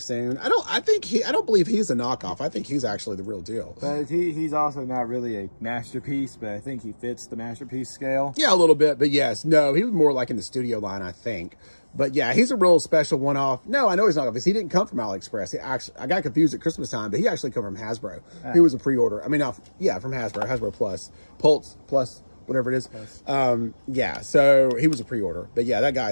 I don't believe he's a knockoff. I think he's actually the real deal. But he's also not really a masterpiece, but I think he fits the masterpiece scale. Yeah, a little bit, but yes, no, he was more like in the studio line, I think. But yeah, he's a real special one-off. No, I know he's not because he didn't come from AliExpress. I got confused at Christmas time, but he actually come from Hasbro. He was a pre-order. I mean, from Hasbro Plus, Pulse Plus, whatever it is. Yeah, so he was a pre-order. But yeah, that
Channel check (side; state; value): both; inverted; correlation -1.00